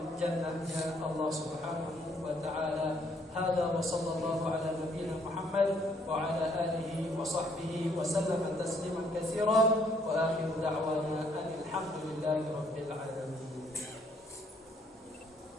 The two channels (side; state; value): both; normal; correlation 0.66